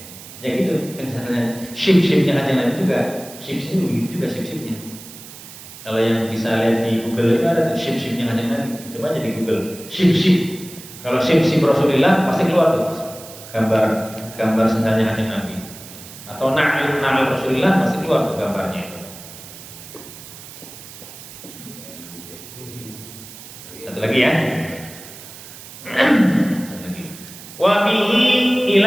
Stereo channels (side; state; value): right; noise; hiss, 16 dB below the sound